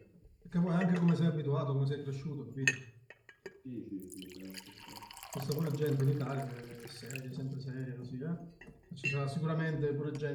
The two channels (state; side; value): identical; both; correlation 1.00